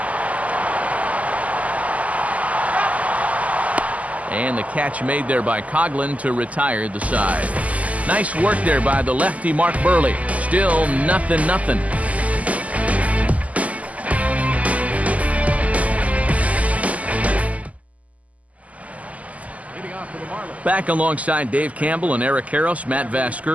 And the catch made there by Coughlin to retire the side. Nice work there by the lefty Mark Burley. Still 0-0. Back alongside Dave Campbell and Eric Karros, Matt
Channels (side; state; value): left; late; 0.072 ms